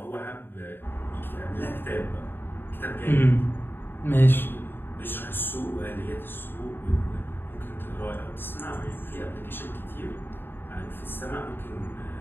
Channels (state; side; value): late; right; 0.10 ms